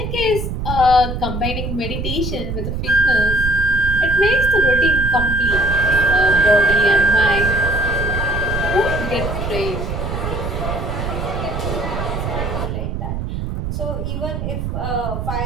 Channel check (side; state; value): right; noise; rumble, 4 dB below the sound